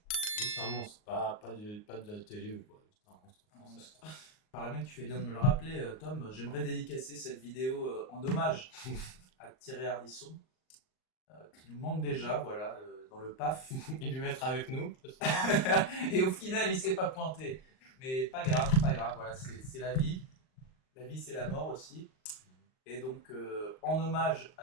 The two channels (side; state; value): right; late; 38 ms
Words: Juste un monstre, pas de la télé ou quoi. Juste un monstre français. Par là même, tu fais bien de me le rappeler, Tom. J'aimerais dédicacer cette vidéo en hommage à Thierry Ardisson, qui nous manque déjà, voilà, dans le PAF. Il devait être avec nous. Et au final, il s'est pas pointé. Mais pas grave, voilà, c'est la vie. La vie, c'est la mort aussi. Et donc, en hommage